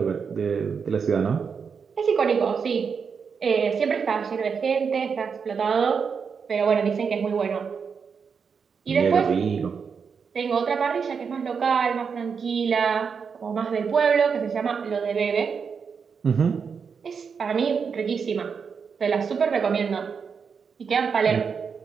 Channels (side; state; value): left; quieter; 6.1 dB